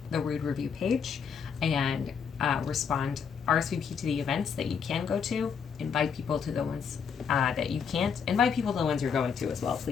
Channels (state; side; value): quieter; right; 6.7 dB